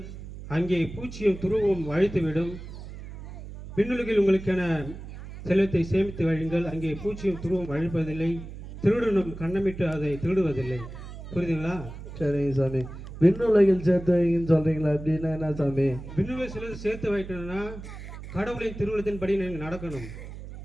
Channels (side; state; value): right; noise; hum, 12 dB below the sound